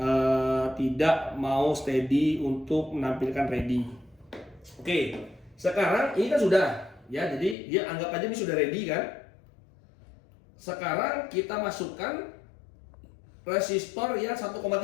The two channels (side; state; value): right; drops out; at 7.6 s